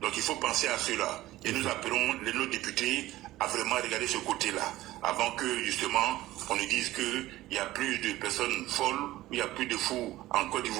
Donc il faut penser à cela. Et nous appelons nos députés à vraiment regarder ce côté-là, avant que justement on nous dise qu'il y a plus de personnes folles, il y a plus de fous en Côte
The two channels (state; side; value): quieter; left; 16.3 dB